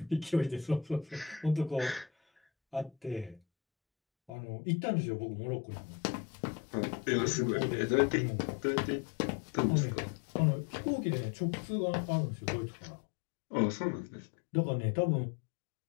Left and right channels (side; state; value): right; drops out; at 4.3 s